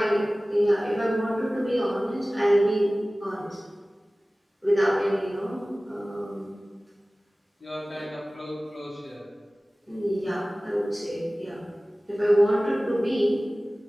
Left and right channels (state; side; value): normal; both; correlation 0.98